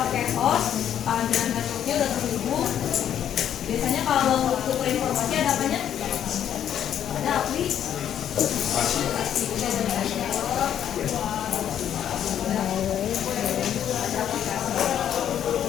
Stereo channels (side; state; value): right; quieter; 9.9 dB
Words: host, ada networknya udah terhubung. Biasanya kalau tukar informasi ada apanya? Ada aplikasi.